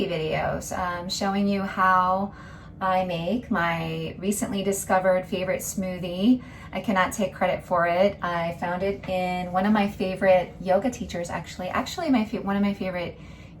videos showing you how I make my recently discovered favorite smoothie. I cannot take credit for it. I found it in one of my favorite yoga teachers, actually one of my favorite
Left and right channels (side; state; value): both; identical; correlation 1.00